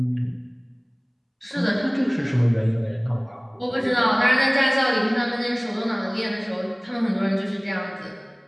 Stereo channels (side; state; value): both; identical; correlation 1.00